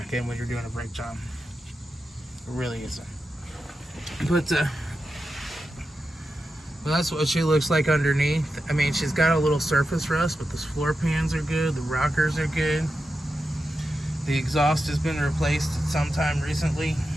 in when you're doing a brake job. It really isn't. But well, that's what she looks like underneath. I mean, she's got a little surface rust, but the floor pans are good, the rockers are good. The exhaust has been replaced sometime recently,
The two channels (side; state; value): both; normal; correlation 0.90